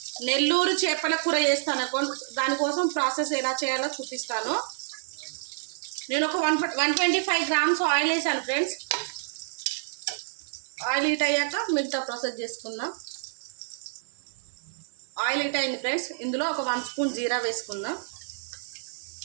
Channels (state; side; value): silent; left; digital silence